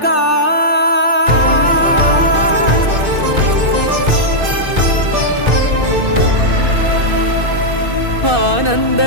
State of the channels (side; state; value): left; late; 2.6 ms